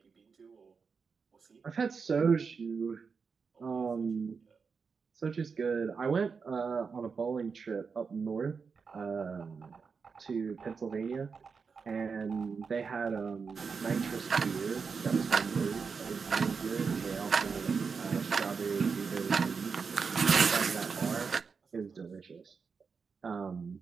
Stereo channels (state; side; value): quieter; left; 5.4 dB